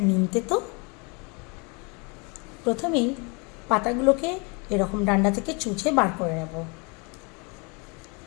নিম তেতো। প্রথমেই পাতাগুলোকে এরকম ডান্ডা থেকে চুচে বার করে নেব।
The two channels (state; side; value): quieter; right; 31.3 dB